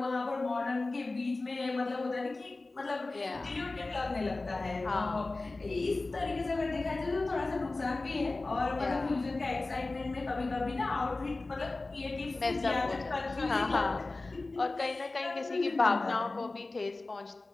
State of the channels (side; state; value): right; quieter; 3.3 dB